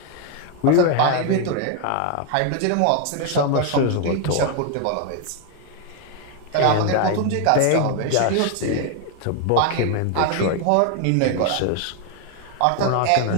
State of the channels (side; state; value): both; different; correlation 0.01